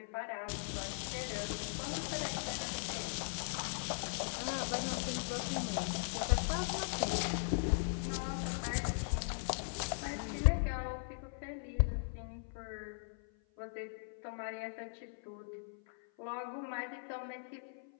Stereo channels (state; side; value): silent; right; 52 dB below the other